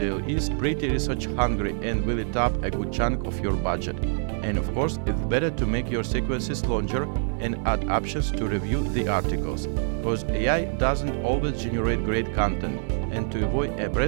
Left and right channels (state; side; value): silent; left; 58 dB below the other